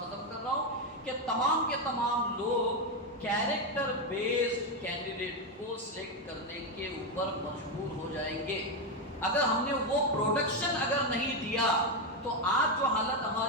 کر رہا ہوں کہ تمام کے تمام لوگ کیریکٹر بیسڈ کینڈیڈیٹ کو سلیکٹ کرنے کے اوپر مجبور ہو جائیں گے۔ اگر ہم نے وہ پروڈکشن اگر نہیں دیا تو آج جو حالت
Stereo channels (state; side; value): normal; both; correlation 0.07